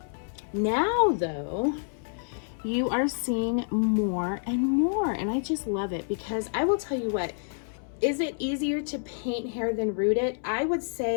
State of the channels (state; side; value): silent; right; 59 dB below the other